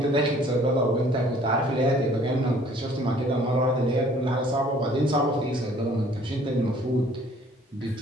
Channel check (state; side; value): normal; both; correlation 0.56